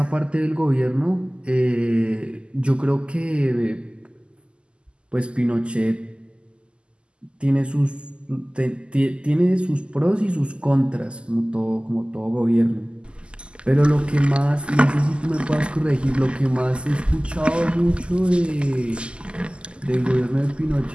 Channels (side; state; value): left; late; 0.051 ms